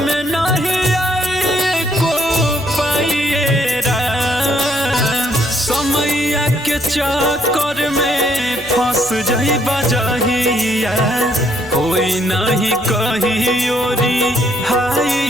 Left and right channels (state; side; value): noise; left; hum, 22 dB below the sound